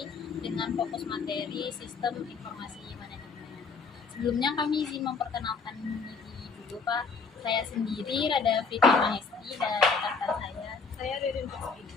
dengan fokus materi Sistem Informasi Manajemen. Sebelumnya kami izin memperkenalkan diri dulu Pak. Saya sendiri Rada Fitri Mahesti dan rekan saya Ririn Rizky.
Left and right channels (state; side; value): quieter; right; 4.9 dB